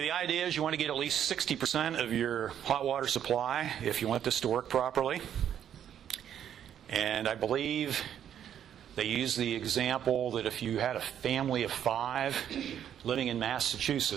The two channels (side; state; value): left; quieter; 9.7 dB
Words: the idea is you want to get at least 60% of your hot water supply if you want this to work properly. And I believe they use the example that if you had a family of 5 living in